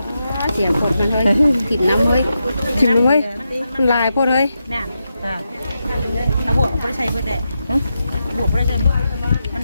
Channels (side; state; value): both; inverted; correlation -0.87